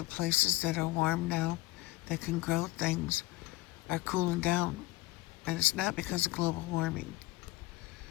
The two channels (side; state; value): right; quieter; 19.7 dB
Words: places that are warm now, that can grow things, are cooling down. And it's not because of global warming.